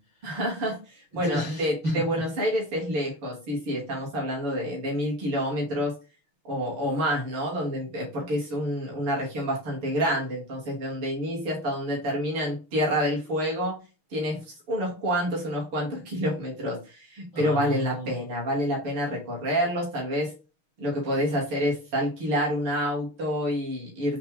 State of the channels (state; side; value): late; left; 6.3 ms